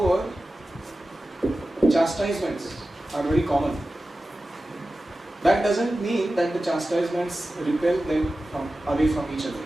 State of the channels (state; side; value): normal; both; correlation 0.94